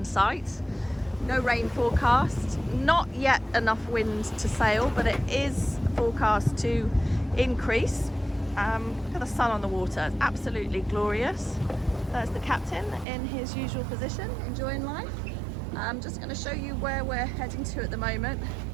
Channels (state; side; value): drops out; left; at 13.1 s